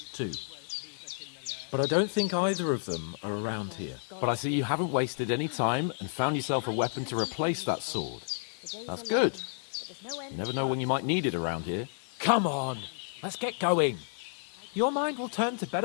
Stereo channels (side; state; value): right; silent; 57 dB below the other